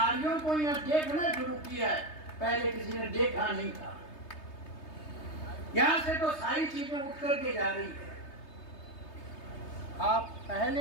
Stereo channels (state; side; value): late; right; 3.3 ms